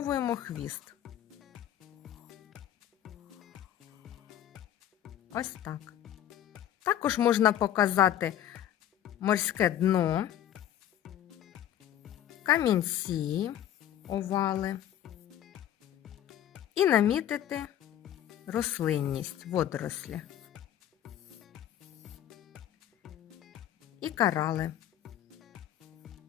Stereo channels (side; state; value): right; quieter; 11.4 dB